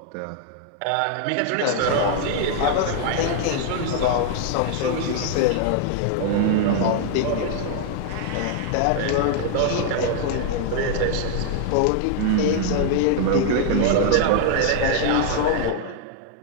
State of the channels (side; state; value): both; different; correlation 0.00